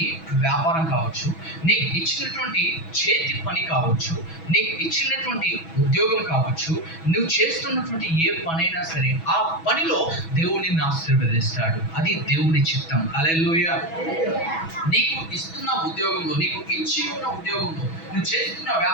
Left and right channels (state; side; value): late; right; 6.1 ms